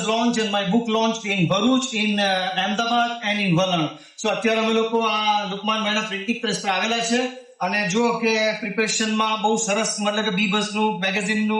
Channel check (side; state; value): both; identical; correlation 1.00